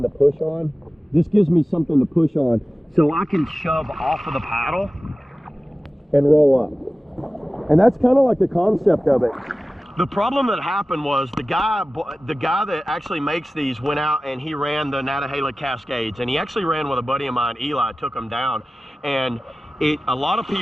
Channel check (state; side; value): normal; both; correlation 0.96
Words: to push on. This gives me something to push on so I can shove off of the paddle and roll up. And that's kind of like the concept of it. The problem that happened was the guy that actually makes these went out and he ran the Nantahala Cascades, and he actually ran with a buddy of mine, Eli, took him down. And a lot of